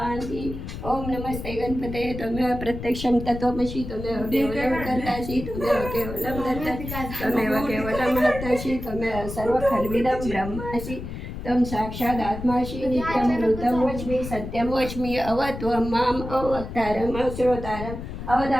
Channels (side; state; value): left; noise; rumble, 8 dB below the sound